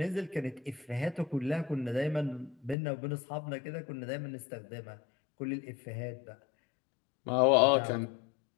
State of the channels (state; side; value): drops out; right; at 2.8 s